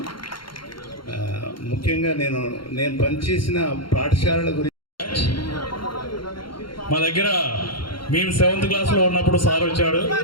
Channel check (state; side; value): late; right; 0.73 ms